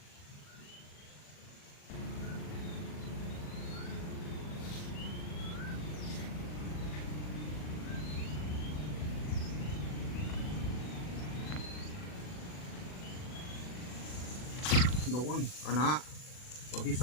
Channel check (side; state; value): right; late; 40 ms